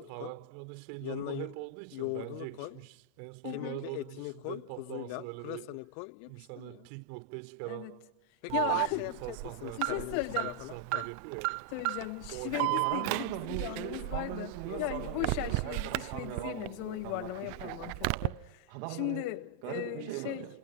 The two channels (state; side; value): different; both; correlation -0.01